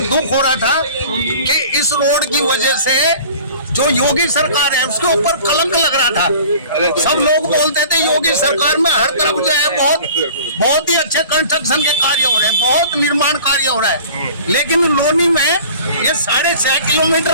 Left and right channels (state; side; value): inverted; both; correlation -0.45